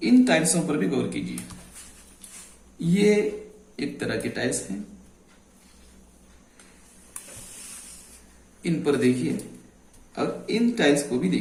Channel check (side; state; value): both; identical; correlation 1.00